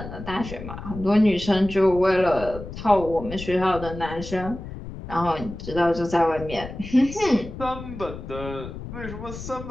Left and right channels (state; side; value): noise; left; rumble, 11 dB below the sound